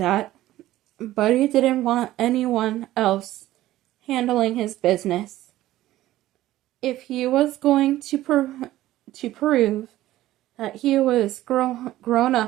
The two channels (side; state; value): left; quieter; 15.1 dB